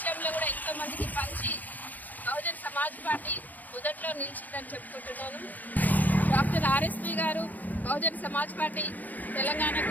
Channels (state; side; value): late; right; 0.082 ms